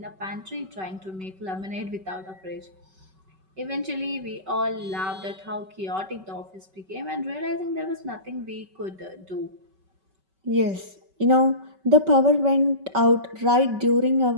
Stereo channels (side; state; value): left; late; 5.3 ms